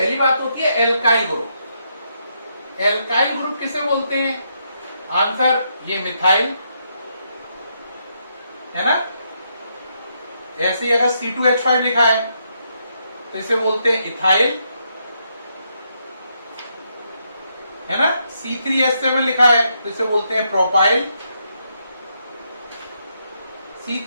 बात होती है एल्काइल ग्रुप। एल्काइल ग्रुप किसे बोलते हैं? आंसर ये मिथाइल, है ना। ऐसे ही अगर C2H5 लिखा है तो इसे बोलते हैं इथाइल, है ना। C3H7 लिखा है तो इसे बोलते हैं प्रोपाइल।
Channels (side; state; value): both; inverted; correlation -0.78